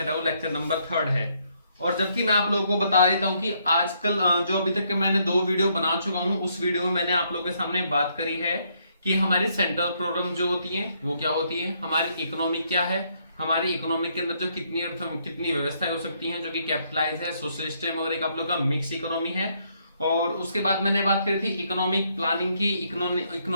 है वो लेक्चर नंबर 3 है। और जबकि मैं आप लोगों को बता देता हूं कि आजकल जो अभी तक के मैंने 2 वीडियो बना चुका हूं, उस वीडियो में मैंने आप लोगों के सामने बात करी है कि हमारी सेंट्रल प्रॉब्लम जो होती है वो क्या होती है, हमारी इकोनॉमी क्या है, हमारी इकोनॉमी के अंदर जो कितनी व्यवस्थाएं हो सकती हैं जो कि कैपिटलाइज है, सोशलिस्ट है और एक आप लोग का मिक्स इकोनॉमी है। और उसके बाद मैंने बात करी थी इकोनॉमिक प्लानिंग की।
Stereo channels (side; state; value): both; inverted; correlation -0.72